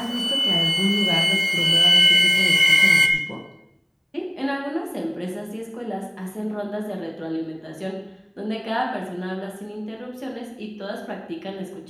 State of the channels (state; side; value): identical; both; correlation 1.00